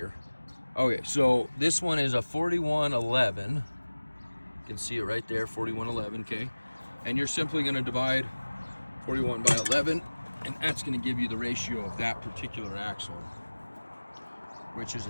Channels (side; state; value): both; inverted; correlation -1.00